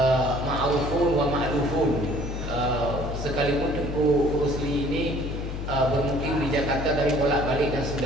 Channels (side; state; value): left; noise; hum, 5 dB below the sound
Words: ma'rufun wa ma'lufun. Sekalipun Tengku Rusli ini bermukim di Jakarta tapi bolak-balik dan